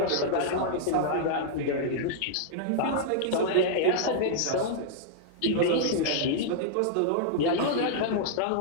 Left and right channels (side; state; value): both; different; correlation -0.01